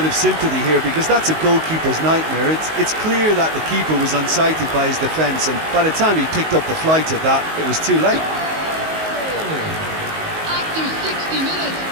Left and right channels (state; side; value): late; left; 19 ms